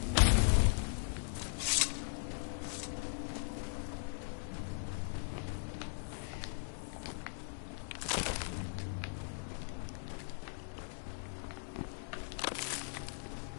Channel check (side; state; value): right; silent; digital silence